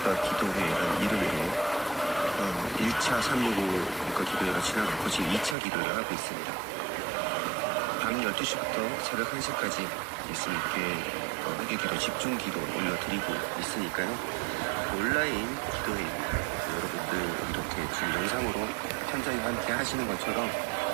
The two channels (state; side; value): drops out; left; at 5.6 s